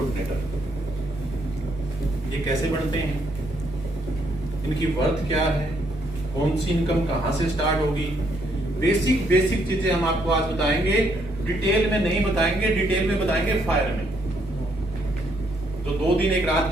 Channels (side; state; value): both; normal; correlation 0.72